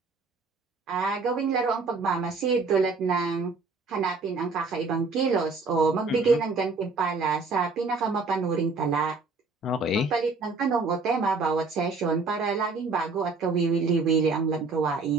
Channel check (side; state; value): left; quieter; 4.2 dB